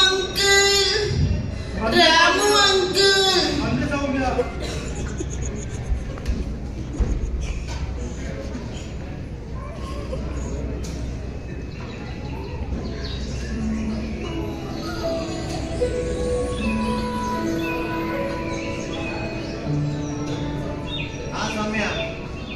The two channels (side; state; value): both; identical; correlation 1.00